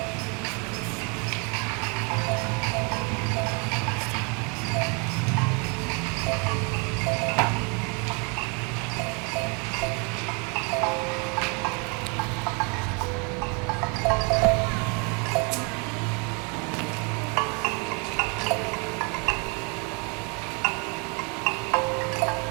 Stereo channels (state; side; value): quieter; left; 33.5 dB